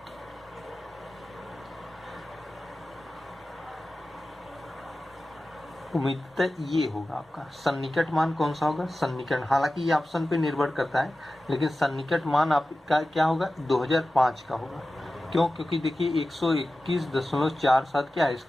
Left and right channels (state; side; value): normal; both; correlation 0.95